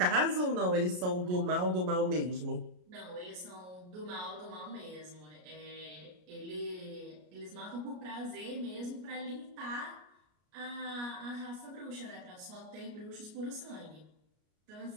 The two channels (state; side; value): late; left; 33 ms